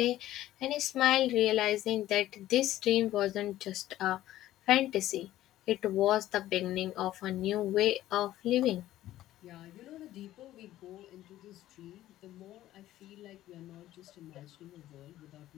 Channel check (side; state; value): right; quieter; 14.2 dB